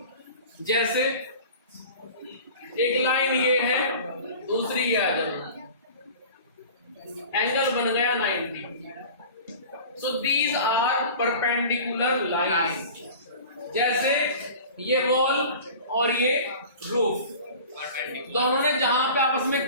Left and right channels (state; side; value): inverted; both; correlation -0.40